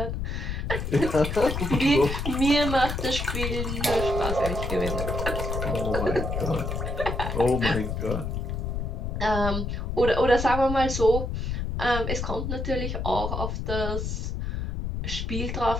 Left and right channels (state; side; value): noise; left; rumble, 3 dB below the sound